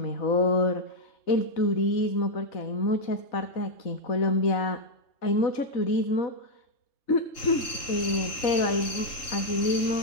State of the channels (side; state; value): right; late; 3.7 ms